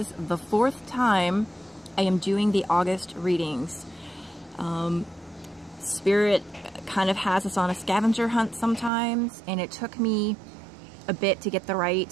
the 4th time I am doing the August readings. Spirit kind of has us on a scavenger hunt sometimes, and it took me a bit to get the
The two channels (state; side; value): drops out; left; at 8.9 s